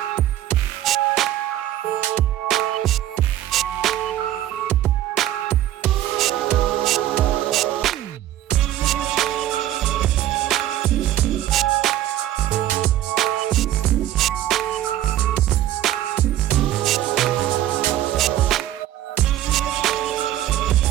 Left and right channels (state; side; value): quieter; left; 12.8 dB